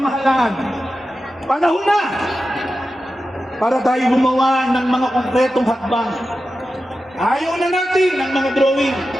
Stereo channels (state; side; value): normal; both; correlation 0.92